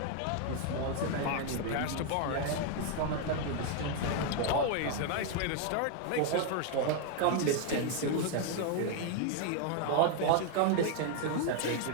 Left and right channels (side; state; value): both; different; correlation 0.00